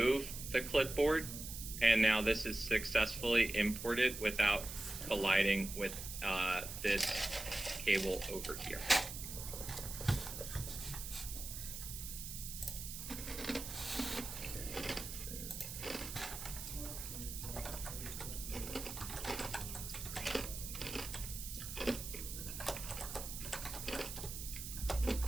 the clipboard, and now this is successfully imported without colliding with this cable over here.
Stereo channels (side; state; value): right; noise; hiss, 8 dB below the sound